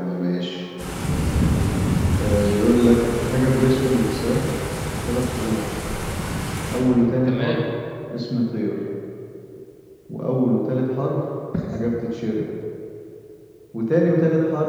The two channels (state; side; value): identical; both; correlation 1.00